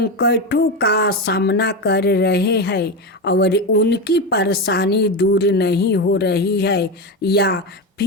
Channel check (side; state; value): both; normal; correlation 0.16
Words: का सामना कर रहे हैं और उनकी परेशानी दूर नहीं हो रही है, या